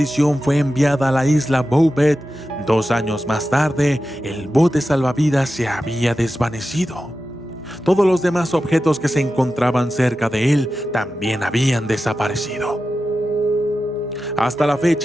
fue enviada a la isla Bouvet, 2 años más tarde, el bote salvavidas se había desvanecido. Todos los demás objetos que se encontraban cerca de él también habían desaparecido. Hasta la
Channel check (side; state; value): both; normal; correlation 0.92